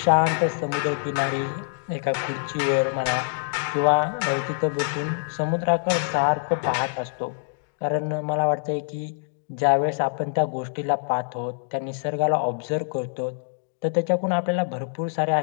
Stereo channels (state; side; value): silent; right; digital silence